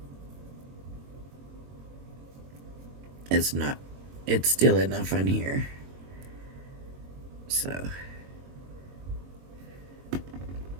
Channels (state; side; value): late; left; 22 ms